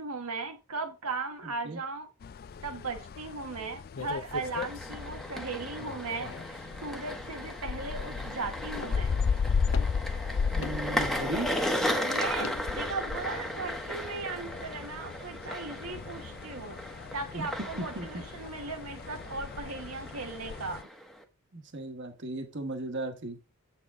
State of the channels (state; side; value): normal; both; correlation 0.47